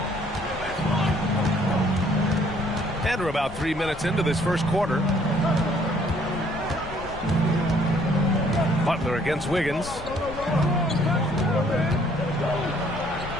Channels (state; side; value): noise; left; rumble, 14 dB below the sound